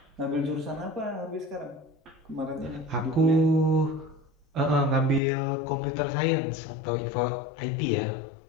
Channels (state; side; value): drops out; right; at 5.2 s